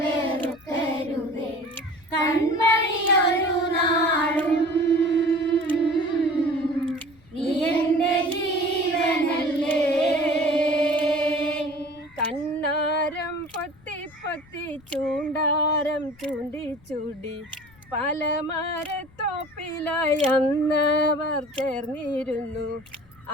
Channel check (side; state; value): left; noise; rumble, 27 dB below the sound